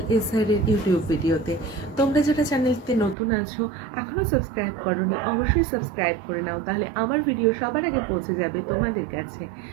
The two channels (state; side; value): drops out; left; at 3.2 s